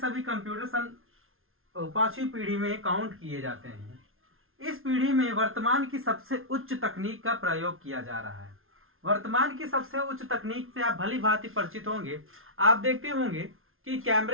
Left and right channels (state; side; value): late; left; 0.61 ms